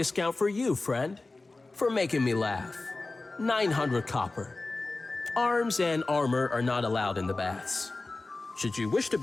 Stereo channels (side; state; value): right; quieter; 3.3 dB